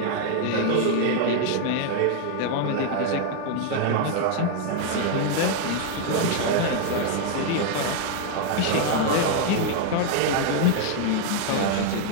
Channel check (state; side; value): different; both; correlation 0.00